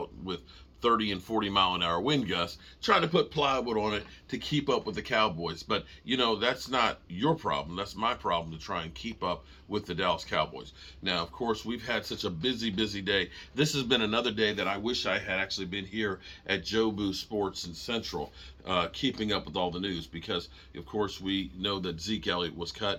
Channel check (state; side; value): identical; both; correlation 1.00